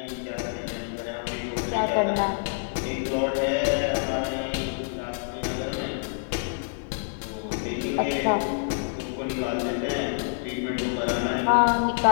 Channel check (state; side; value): silent; right; digital silence